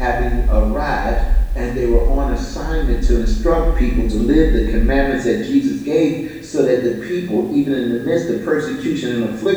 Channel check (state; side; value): identical; both; correlation 1.00